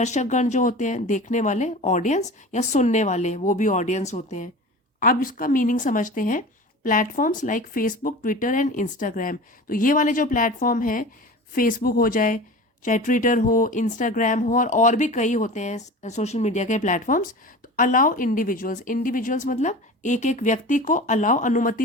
जो होते हैं देखने वाले, ऑडियंस, या सुनने वाले, वो भी ऑडियंस होते हैं। अब इसका मीनिंग समझते हैं। Platforms like Facebook, Twitter and Instagram. तो ये वाले जो प्लेटफॉर्म हैं, फेसबुक हो जाए, चाहे ट्विटर हो, इंस्टाग्राम हो, और भी कई होते हैं सोशल मीडिया के प्लेटफॉर्म्स। तो अलाउ इंडिविजुअल्स, इंडिविजुअल्स मतलब एक एक व्यक्ति को अलाउ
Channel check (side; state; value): both; normal; correlation 0.35